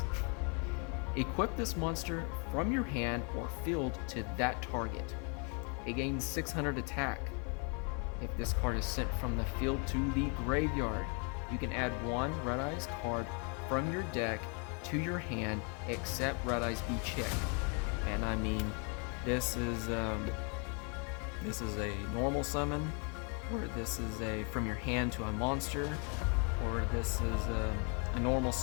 Equip this monster from your hand or field to that target. It gains 600 attack. If this card is sent from the field to the graveyard, you can add 1 Red Eyes card from your deck to your hand, except Red Eyes B Chick. And I mean, this is a normal summon, or this is a from your hand to a monster, or this is a normal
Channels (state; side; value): quieter; right; 36.4 dB